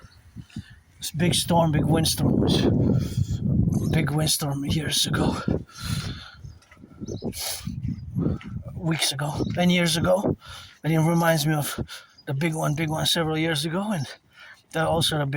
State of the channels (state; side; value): identical; both; correlation 1.00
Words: This big windstorm big windstorm years ago, weeks ago, and years ago, and it reminds me of the big one several years ago, and that also the